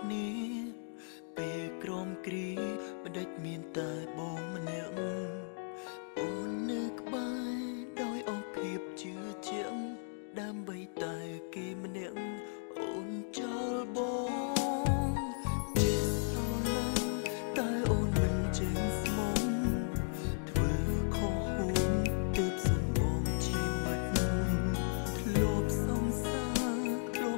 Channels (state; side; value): silent; right; digital silence